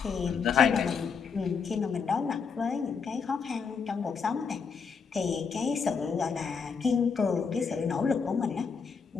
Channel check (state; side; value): quieter; right; 5.7 dB